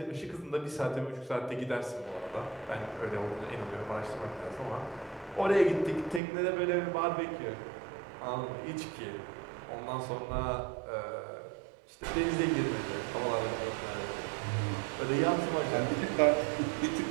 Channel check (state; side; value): drops out; left; at 6.2 s